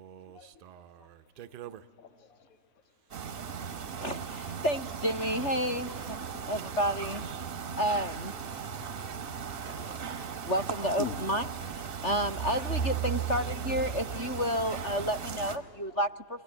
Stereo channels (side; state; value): right; late; 2.7 ms